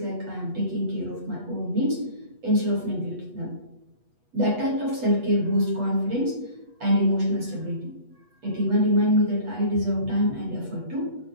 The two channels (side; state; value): left; late; 8.2 ms